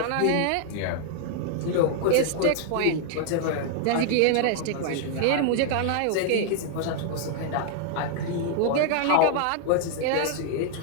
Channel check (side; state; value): both; different; correlation 0.00